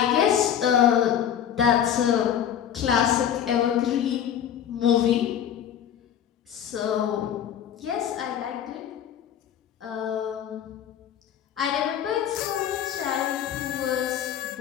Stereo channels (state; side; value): quieter; right; 9.5 dB